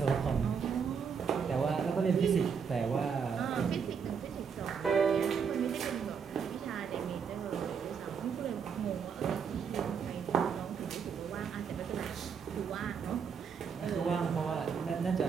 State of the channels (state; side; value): quieter; left; 6.5 dB